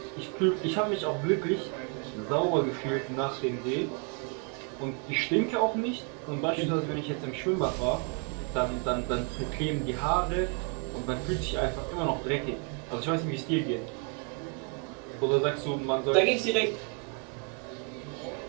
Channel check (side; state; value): left; quieter; 38.2 dB